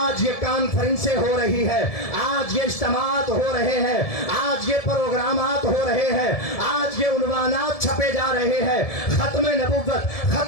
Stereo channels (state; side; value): late; right; 1.7 ms